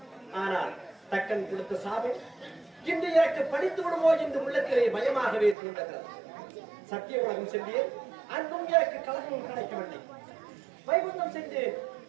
ஆனால் தக்கன் கொடுத்த சாபம் இன்று எனக்கு படித்து விடுமோ என்று உள்ளத்திலே பயமாகவே தோன்றுகிறது. சத்திய உலகம் சென்றேன், அன்றும் எனக்கு கலகம் கிடைக்கவில்லை. வைகுந்தம் சென்றேன்,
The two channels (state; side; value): drops out; left; at 5.6 s